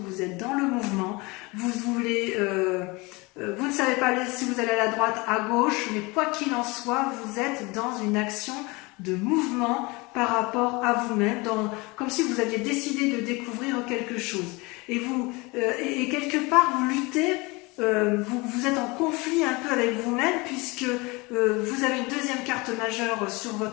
vous êtes dans le mouvement, vous ne savez pas si vous allez à la droite, à gauche, mais quoi qu'il en soit, vous êtes dans une action de mouvement par rapport à vous-même, comme si vous aviez décidé de découvrir quelque chose. Et quelque part, vous luttez, vous êtes en conflit un peu avec vous-même, puisque vous avez une deuxième carte majeure sur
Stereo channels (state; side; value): quieter; right; 25.3 dB